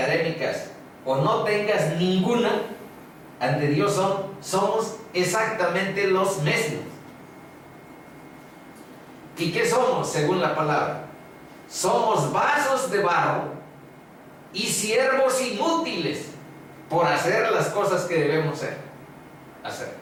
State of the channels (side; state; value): both; identical; correlation 1.00